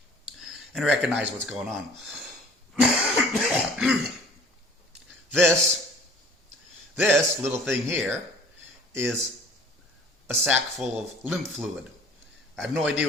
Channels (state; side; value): normal; both; correlation 0.50